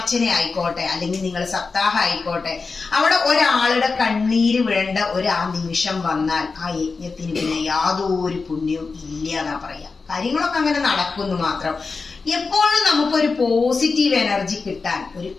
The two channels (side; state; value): right; quieter; 4.4 dB